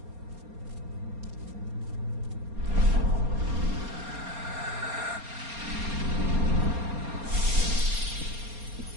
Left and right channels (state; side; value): late; left; 4.3 ms